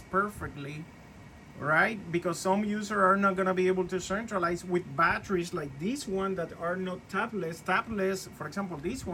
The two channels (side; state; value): both; identical; correlation 1.00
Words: right? Because some users are not going to be able to centralize with batteries like this one that are not tapless. For example, this